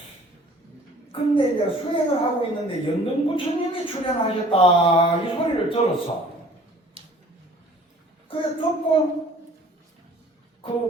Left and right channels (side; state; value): both; normal; correlation 0.51